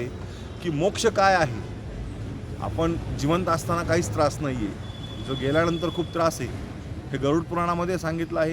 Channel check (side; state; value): both; identical; correlation 1.00